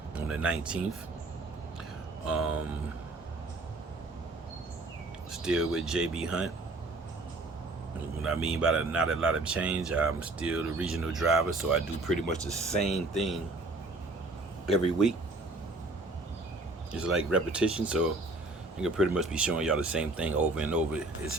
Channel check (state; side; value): quieter; left; 3.0 dB